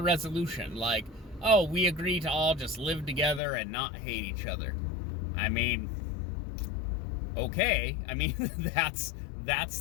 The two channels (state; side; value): drops out; right; at 3.4 s